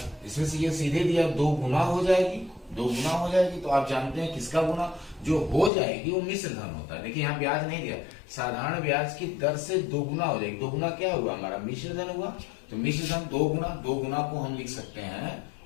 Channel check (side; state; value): right; drops out; at 5.7 s